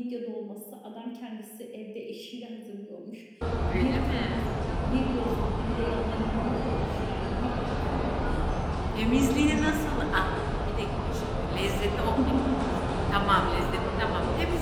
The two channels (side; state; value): both; identical; correlation 1.00